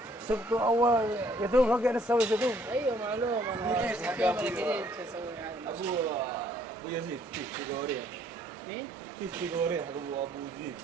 Sabtu awal itu pakai ada saus itu. Ayo malu mana. Abu Yazid, tiga orang. Nih, Tiga orang. Abu Yazid.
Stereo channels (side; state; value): both; normal; correlation 0.64